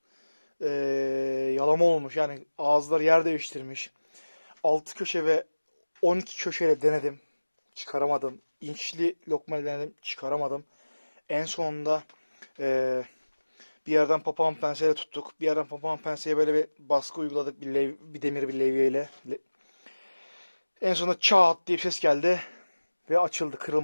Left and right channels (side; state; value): both; inverted; correlation -1.00